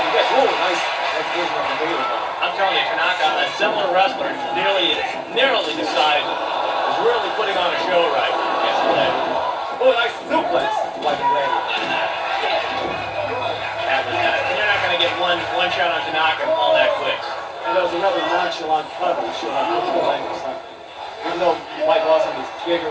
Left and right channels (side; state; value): both; identical; correlation 1.00